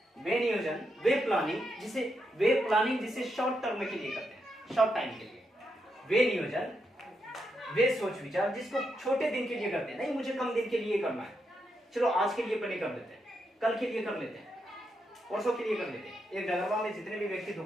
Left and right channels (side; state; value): both; normal; correlation 0.82